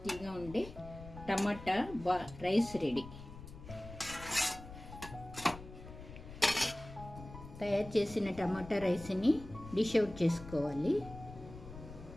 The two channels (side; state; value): left; noise; rumble, 14 dB below the sound